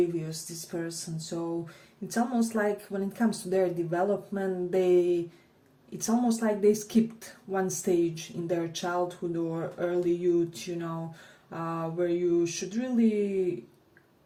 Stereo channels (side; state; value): both; identical; correlation 1.00